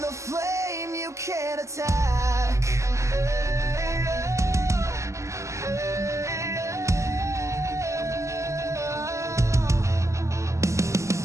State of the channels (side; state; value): left; late; 0.14 ms